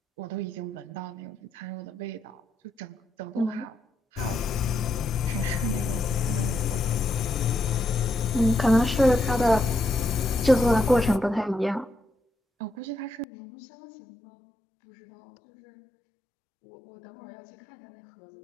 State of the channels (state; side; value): drops out; right; at 13.2 s